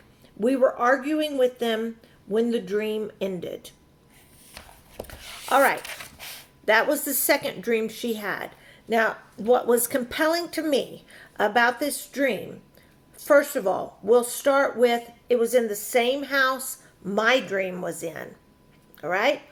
We were arguing with them when the dream ended. All right, that was the second dream she had. Now, what was compelling to me about this dream, first of all, we'll start with, it was in the same house my dream was in. All right?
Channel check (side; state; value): both; identical; correlation 1.00